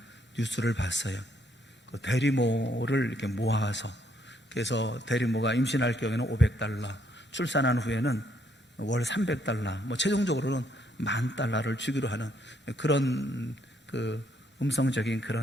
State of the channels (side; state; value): both; normal; correlation 0.71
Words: 뉴스를 봤어요. 그 대리모를 이렇게 모아서 그래서 대리모가 임신할 경우에는 $500, 출산한 후에는 월 $300, 최종적으로는 $10,000를 주기로 하는 그런 그 음성적인